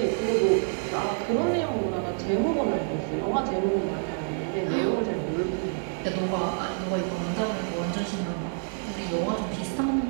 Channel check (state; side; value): silent; left; 60 dB below the other